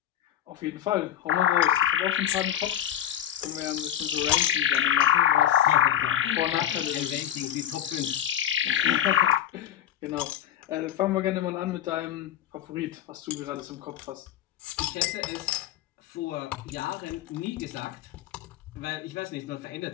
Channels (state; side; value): quieter; right; 11.1 dB